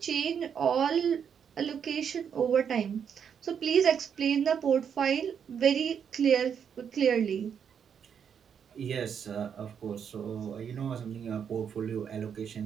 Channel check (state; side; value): quieter; left; 7.6 dB